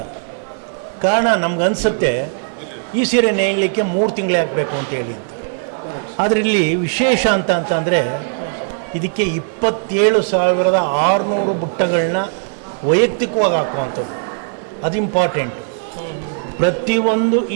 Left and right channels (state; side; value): silent; left; digital silence